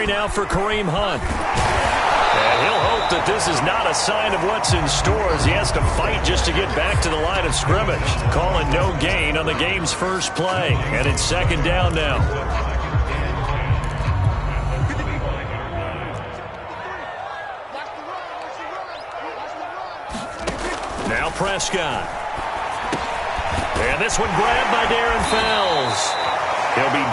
now for Kareem Hunt. And he'll hope that this is not a sign of what's in store as he has to fight just to get back to the line of scrimmage. Calling no gain on the game's first play. And it's second down now. Now Prescott. And this one grabbed by Darren Fells. He'll be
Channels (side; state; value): both; identical; correlation 1.00